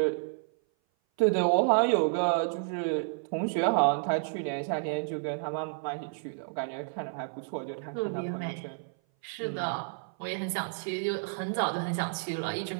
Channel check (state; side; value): silent; left; 56 dB below the other